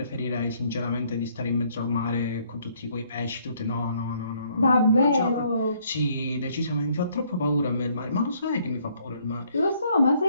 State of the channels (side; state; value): both; inverted; correlation -0.66